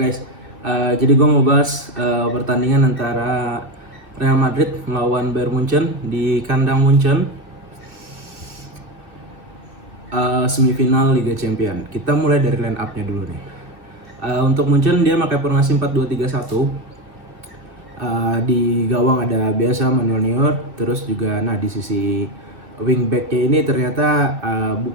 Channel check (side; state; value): left; late; 2.6 ms